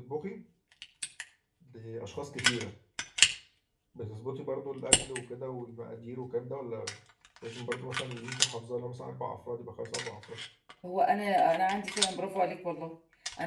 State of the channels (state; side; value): identical; both; correlation 1.00